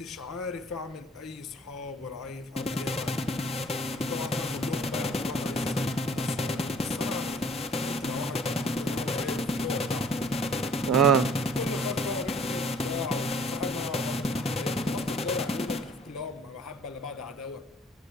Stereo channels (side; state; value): both; normal; correlation 0.53